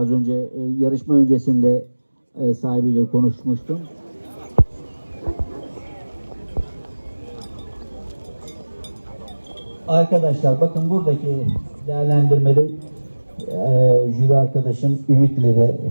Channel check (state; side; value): inverted; both; correlation -1.00